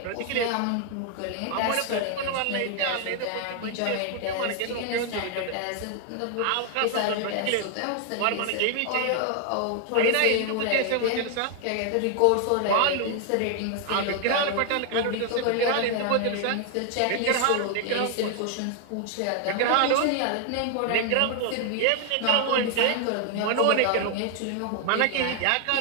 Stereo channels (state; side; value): different; both; correlation 0.00